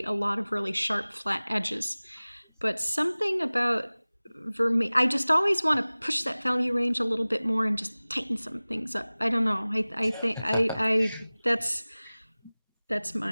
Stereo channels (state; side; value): inverted; both; correlation -0.99